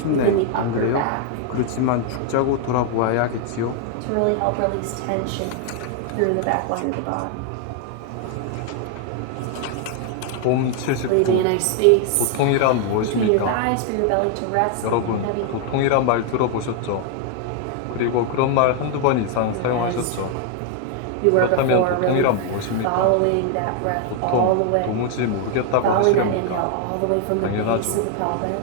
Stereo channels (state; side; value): different; both; correlation 0.00